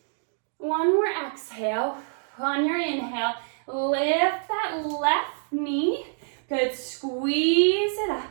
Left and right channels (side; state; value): left; silent; digital silence